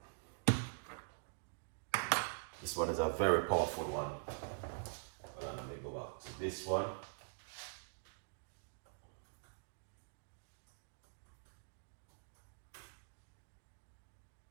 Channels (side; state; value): left; silent; digital silence